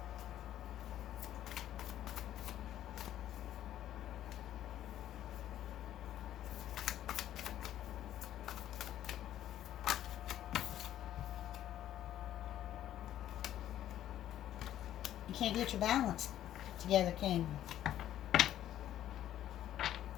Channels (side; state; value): right; quieter; 12.0 dB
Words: You can't get your balance together, can you?